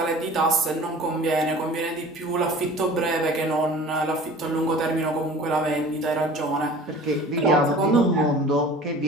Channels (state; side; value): normal; both; correlation 0.43